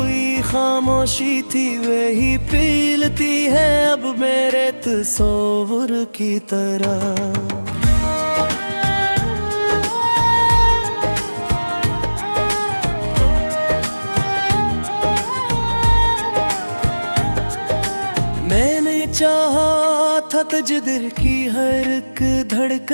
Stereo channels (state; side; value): inverted; both; correlation -1.00